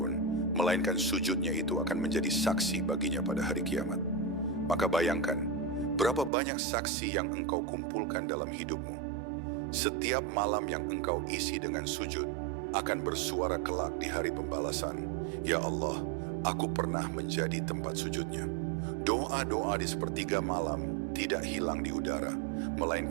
melainkan sujudnya itu akan menjadi saksi baginya pada hari kiamat. Maka bayangkan, berapa banyak saksi yang engkau kumpulkan dalam hidupmu. Setiap malam yang engkau isi dengan sujud akan bersuara kelak di hari pembalasan. Ya Allah, aku pernah menjadi tempat sujudnya. Doa-doa di sepertiga malam tidak hilang di udara,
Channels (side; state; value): left; drops out; at 6.3 s